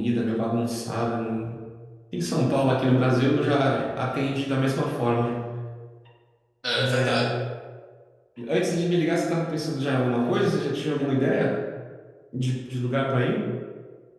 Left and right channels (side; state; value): both; identical; correlation 1.00